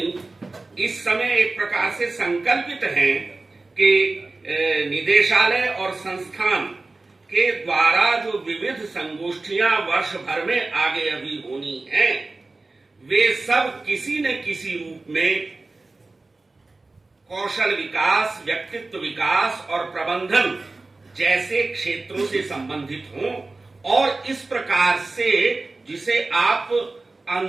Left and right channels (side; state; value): left; quieter; 3.4 dB